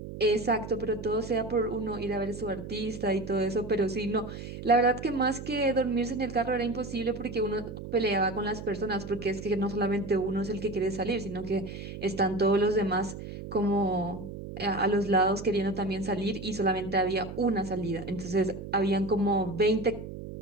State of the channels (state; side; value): noise; right; hum, 10 dB below the sound